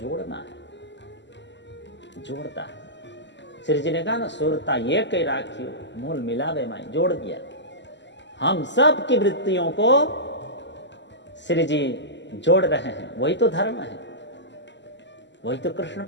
है, जोड़ता है। श्री जी ने कहा ना, सुरता ये कई राखियो, मूल मिलावे माई, जोड़ दिया। हम सब की वृत्तियों को श्री जी जोड़ रहे हैं, वही तो धर्म है, वही तो कृष्ण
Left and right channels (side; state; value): right; late; 0.52 ms